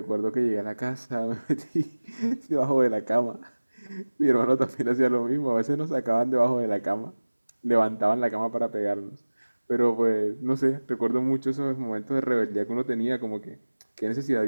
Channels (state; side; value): inverted; both; correlation -1.00